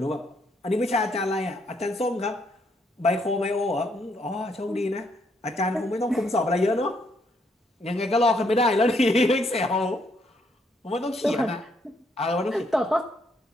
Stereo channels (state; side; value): normal; both; correlation 0.73